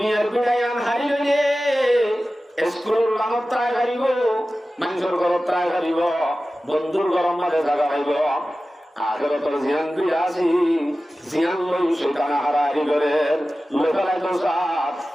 বিড়া ইয়ান হারিলে স্কুলের লানত ত্রায় হারিব মানুষের ঘরত ত্রায় হারিব বন্ধুর ঘরের মাঝে জায়গা পাইব আখিরাতের জিয়ান বিড়া আছে জিয়ান লই শয়তান হারাই করে লোকালাই তো সাথ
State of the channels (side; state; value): both; normal; correlation 0.95